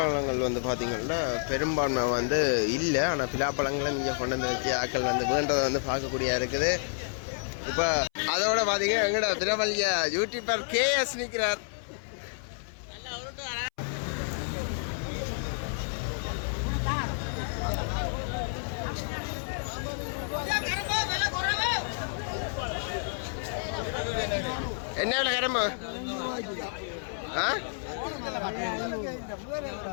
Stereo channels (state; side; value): silent; right; 58 dB below the other